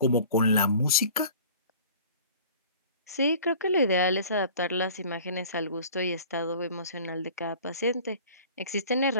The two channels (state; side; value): inverted; both; correlation -0.45